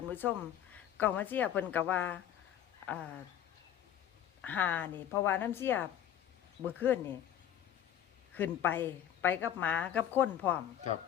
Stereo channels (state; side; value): quieter; right; 10.6 dB